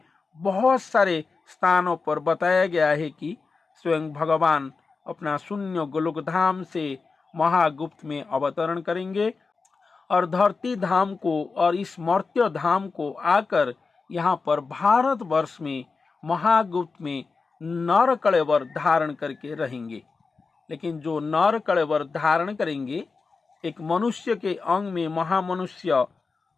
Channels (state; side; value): quieter; right; 4.4 dB